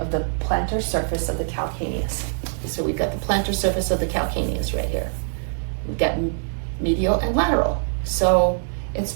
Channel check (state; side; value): silent; left; digital silence